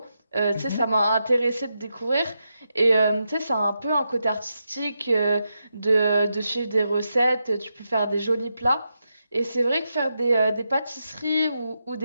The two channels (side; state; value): both; inverted; correlation -0.86